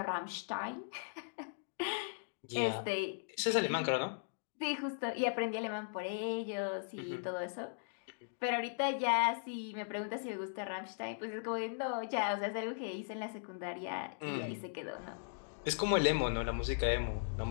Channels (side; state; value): right; silent; digital silence